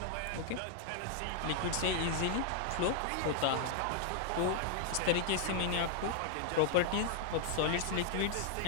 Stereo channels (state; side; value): different; both; correlation 0.00